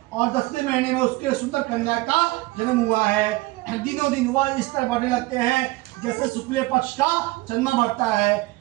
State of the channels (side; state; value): left; quieter; 20.8 dB